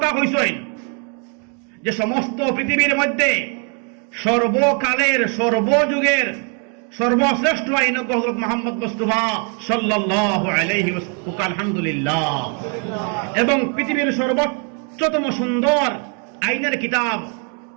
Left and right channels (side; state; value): left; quieter; 39.1 dB